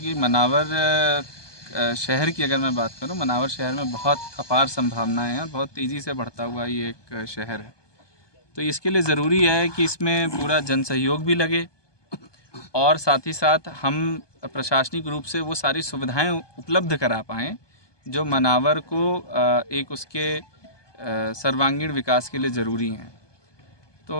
मनावर शहर की अगर मैं बात करूं, मनावर शहर में बहुत अपार संभावनाएं हैं, बहुत तेज़ी से बढ़ता हुआ ये एक शहर है। तो इसके लिए ज़रूरी है कि इसमें पूरा जन सहयोग भी लगे और साथ ही साथ हम प्रशासनिक रूप से वो सारी सुविधाएं उपलब्ध करा पाएँ जो मनावर को एक उसके सर्वांगीण विकास के लिए ज़रूरी हैं।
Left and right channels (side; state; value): right; late; 1.2 ms